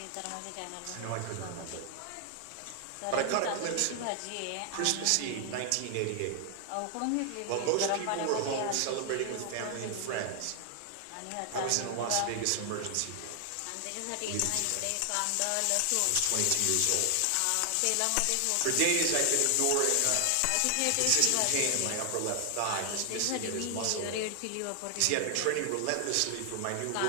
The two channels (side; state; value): both; different; correlation 0.00